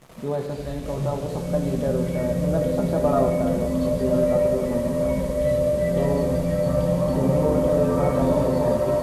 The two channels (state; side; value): identical; both; correlation 1.00